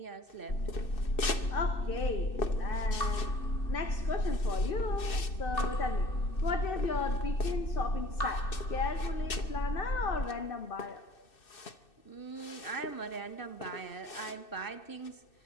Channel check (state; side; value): late; right; 2.6 ms